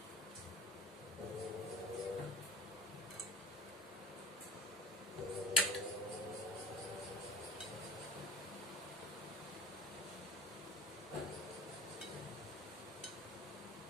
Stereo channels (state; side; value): normal; both; correlation 0.39